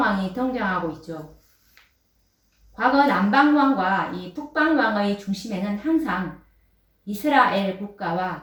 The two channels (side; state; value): both; identical; correlation 1.00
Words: 등장하고 있죠. 과거 남방왕과 이 북방왕의 중심에는 항상 이스라엘